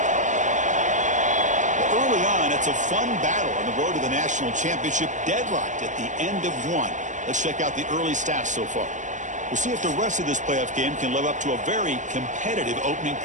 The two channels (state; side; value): late; left; 0.36 ms